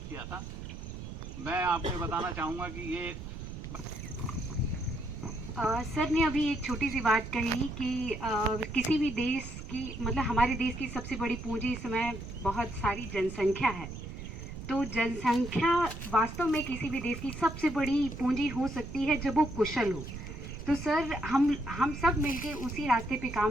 किया था। मैं आपको बताना चाहूँगा कि ये सर ने अभी एक छोटी सी बात कही कि किसी भी देश की, मतलब हमारे देश की सबसे बड़ी पूंजी इस समय बहुत सारी जनसंख्या है। तो जनसंख्या वास्तव में किसी भी देश की सबसे बड़ी पूंजी हो सकती है जब वो कुशल हो। तो सर हम सब मिलके उसी रास्ते पे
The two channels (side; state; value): right; noise; rumble, 9 dB below the sound